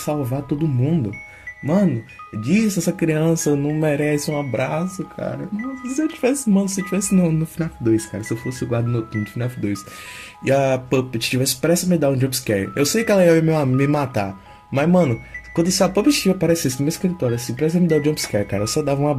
todo mundo. Mano, essa criança não merece um abraço, cara. Nossa, se eu tivesse no FNAF 2, cara, se eu fosse o guarda noturno do FNAF 2 e a Puppet tivesse prestes a me dar um jumpscare, eu sei que ela ia me matar, mas, mano, quando a Puppet aparecesse no meu escritório, assim, prestes a me dar um jumpscare, cara, eu só dava um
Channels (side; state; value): both; identical; correlation 1.00